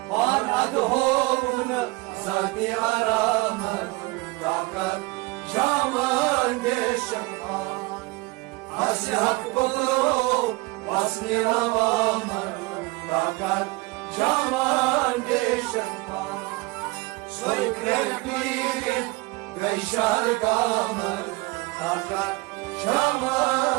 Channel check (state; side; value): quieter; left; 23.3 dB